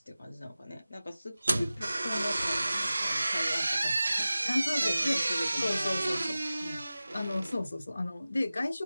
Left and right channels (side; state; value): both; inverted; correlation -0.96